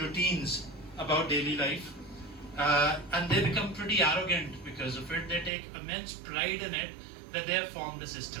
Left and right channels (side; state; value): left; drops out; at 5.5 s